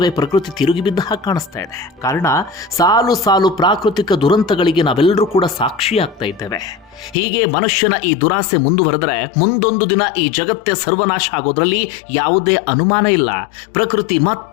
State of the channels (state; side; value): drops out; right; at 7.2 s